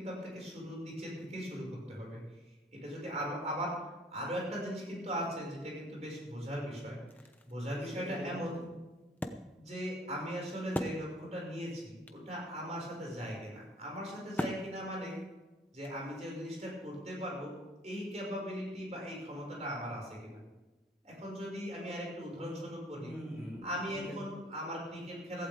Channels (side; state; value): both; normal; correlation 0.57